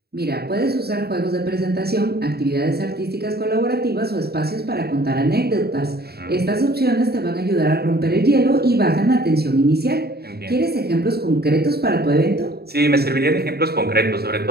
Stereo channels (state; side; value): late; left; 0.46 ms